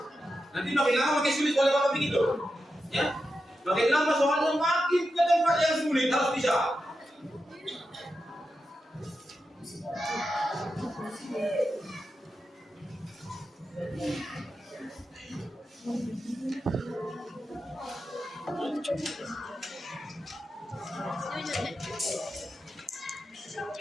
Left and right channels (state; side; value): normal; both; correlation 0.89